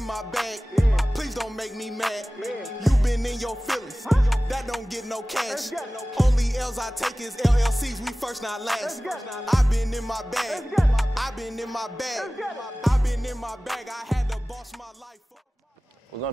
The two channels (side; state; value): both; normal; correlation 0.97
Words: my bag. Please don't make me mad. You been in your feelings. That don't get no cash. Only L's I take is LLCs. We first, not last. I've been in my bag. I've been in my bag. I've been in my bag. I had to boss my life up. We're